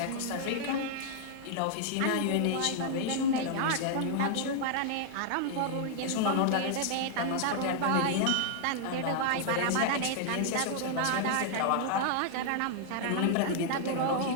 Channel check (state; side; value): different; both; correlation -0.01